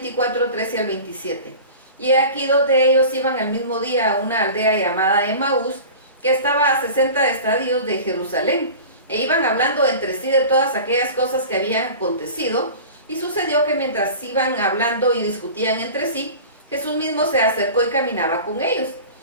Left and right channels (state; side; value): inverted; both; correlation -0.37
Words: Y aquí 2 de ellos iban al mismo día a una aldea llamada Emaús, que estaba a 60 estadios de Jerusalén, e iban hablando entre sí de todas aquellas cosas que habían acontecido. Y sucedió que mientras iban hablando y discutían entre sí, Jesús mismo se acercó y caminaba con ellos.